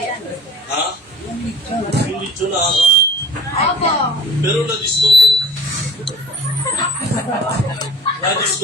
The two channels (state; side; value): normal; both; correlation 0.45